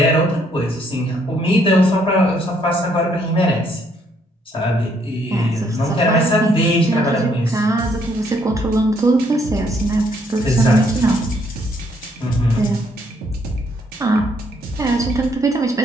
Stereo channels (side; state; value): both; normal; correlation 0.69